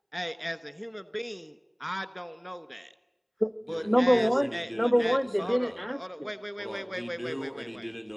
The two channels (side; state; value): both; identical; correlation 1.00